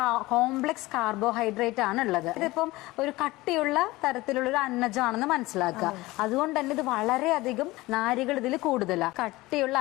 കോംപ്ലക്സ് കാർബോഹൈഡ്രേറ്റ് ആണ് ഉള്ളത്. ഇതിപ്പം ഒരു കട്ടിയുള്ള തരത്തിലുള്ള ഒരു അന്നജമാണെന്ന് മനസ്സിലാക്കുക. അതുകൊണ്ട് തന്നെ ഇത് വളരെയധികം നാരുകൾ ഇതിൽ കൂടുതലാണ്. കട്ടിയുള്ള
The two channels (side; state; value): right; quieter; 19.8 dB